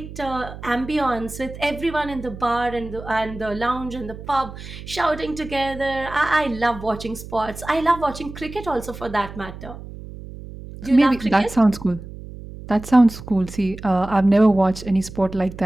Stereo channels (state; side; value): noise; right; hum, 13 dB below the sound